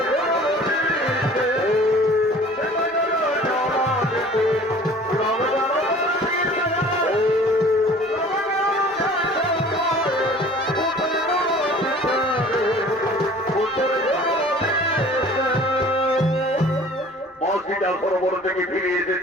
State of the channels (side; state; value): both; normal; correlation 0.48